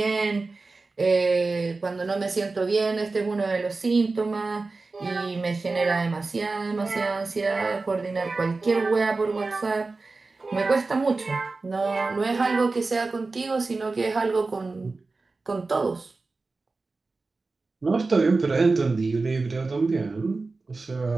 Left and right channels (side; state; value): left; quieter; 3.7 dB